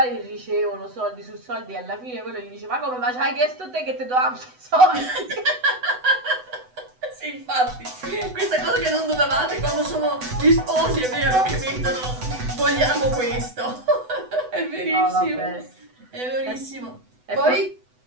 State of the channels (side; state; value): left; late; 8.0 ms